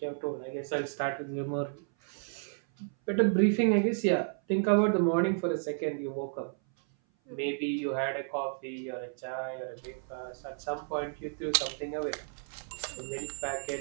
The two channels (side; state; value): left; silent; 56 dB below the other